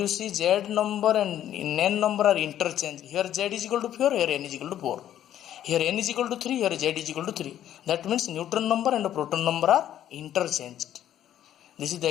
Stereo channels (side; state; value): right; quieter; 11.4 dB